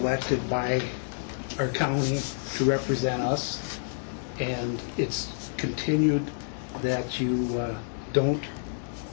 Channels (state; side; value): silent; right; digital silence